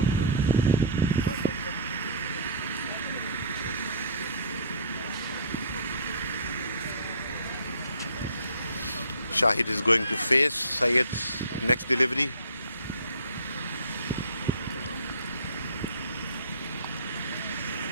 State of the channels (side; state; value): both; inverted; correlation -0.39